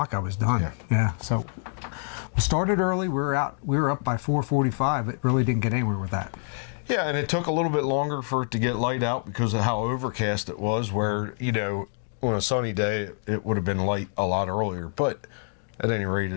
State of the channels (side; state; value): right; silent; 56 dB below the other